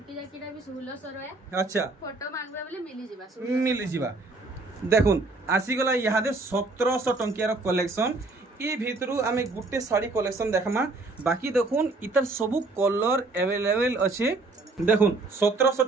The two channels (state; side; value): quieter; left; 3.3 dB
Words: जाकीटा भी 1600 रहे अच्छा फोटो मांगबा बोले मिली जिबा देखुन आसी गला यादे 1700 टंकियार कलेक्शन ई भितरु आमे गुटे साड़ी कलेक्शन देखमा बाकी देखुन इतर सबु कलर अवेलेबल अछि देखुन 1700